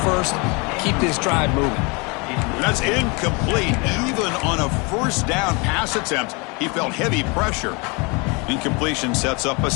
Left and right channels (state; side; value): quieter; right; 29.6 dB